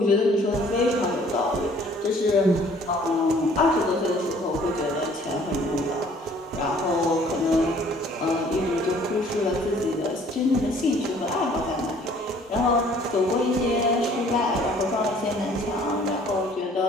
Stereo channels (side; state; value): both; normal; correlation 0.56